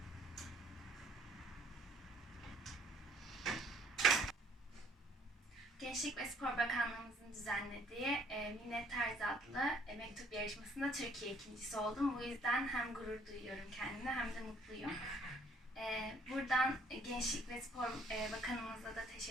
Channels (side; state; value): both; normal; correlation 0.61